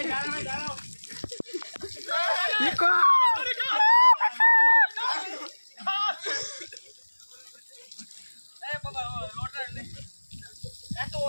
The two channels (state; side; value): inverted; both; correlation -1.00